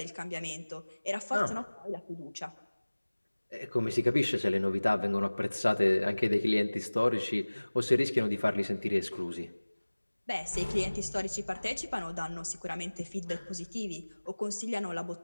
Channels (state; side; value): inverted; both; correlation -1.00